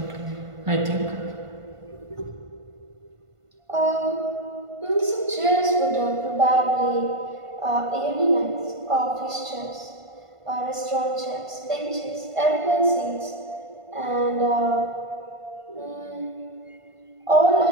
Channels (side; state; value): left; late; 1.5 ms